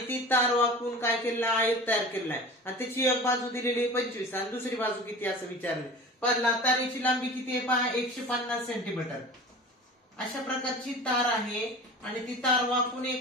तार वाकवून काय केलेलं, आयत तयार केलेला आहे आणि त्याची एक बाजू दिलेली 25 आणि दुसरी बाजू किती असं विचारले। पहिला तारेची लांबी किती आहे पहा, 150 सेंटीमीटर। अशा प्रकारची तार आहे आणि ती तार वाकवून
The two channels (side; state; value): both; normal; correlation 0.37